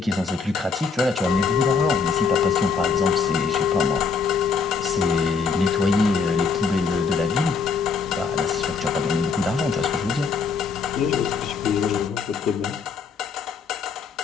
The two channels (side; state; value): right; quieter; 5.2 dB